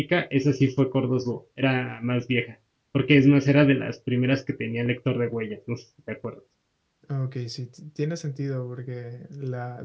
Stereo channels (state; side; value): identical; both; correlation 1.00